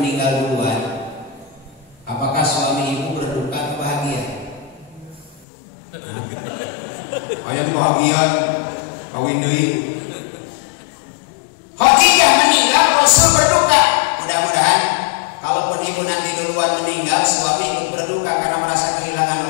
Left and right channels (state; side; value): drops out; right; at 5.5 s